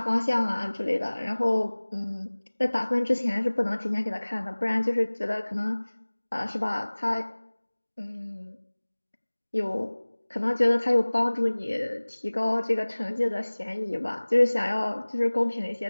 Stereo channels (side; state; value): both; inverted; correlation -1.00